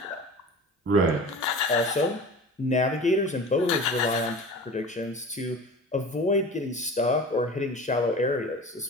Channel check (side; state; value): both; normal; correlation 0.36